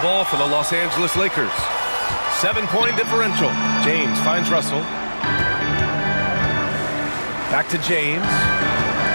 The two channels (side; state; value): both; inverted; correlation -1.00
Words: for the Los Angeles Lakers. 7-point differential. James finds Russell. Back to James.